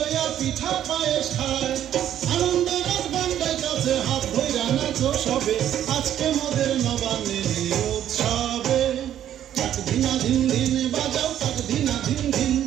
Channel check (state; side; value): quieter; left; 10.9 dB